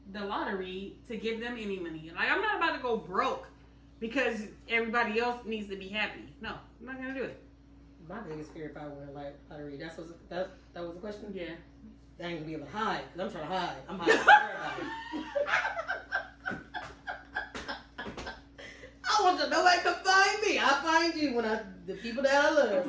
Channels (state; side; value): identical; both; correlation 1.00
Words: the lottery to give them any money? Like, I'm not about to go broke because everybody else needs to be happy. No, I'm not gonna do it. My biggest fear if I win a lottery, that was the question? Yeah. I ain't gonna be able to hide, because I'm trying to hide. I'm hiding from everybody. I want you, nobody can find me. I find you when the people that I